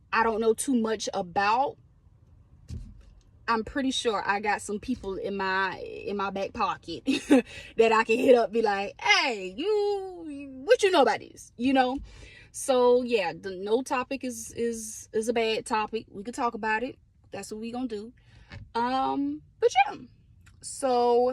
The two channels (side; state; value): both; identical; correlation 1.00